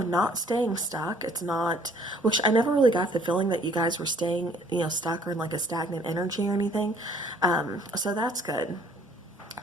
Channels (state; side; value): normal; both; correlation 0.58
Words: not staying stuck. It's not, which I never really got the feeling that you guys were staying, you know, stuck or in like a stagnant energy or anything. So that's good.